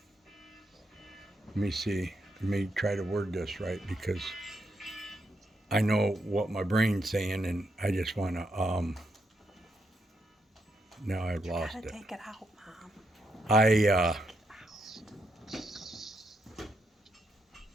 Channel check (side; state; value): both; normal; correlation 0.80